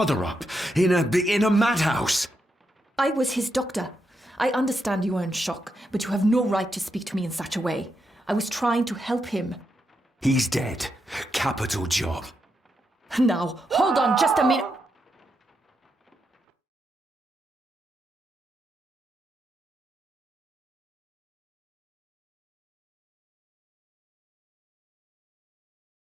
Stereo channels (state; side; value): normal; both; correlation 0.83